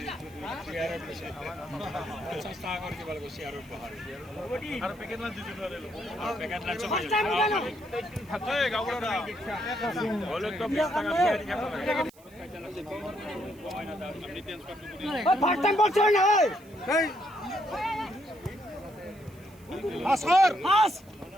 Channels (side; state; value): right; noise; hiss, 27 dB below the sound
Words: 50 টাকা করে কিবা লাগে শেয়ার উপহার আর প্যাকেট না দিতে পারে আর প্যাকেট না চলে থাকে গাবড়া হলো তো 20 টাকা দিয়ে দিতে পারে ফার্স্ট টাইম বলছ না এই আসর আস